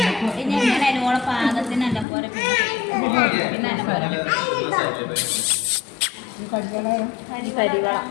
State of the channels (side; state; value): right; drops out; at 2.1 s